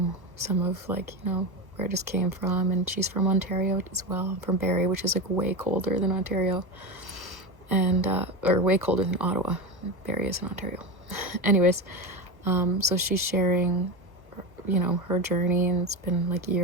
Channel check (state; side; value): late; left; 1.2 ms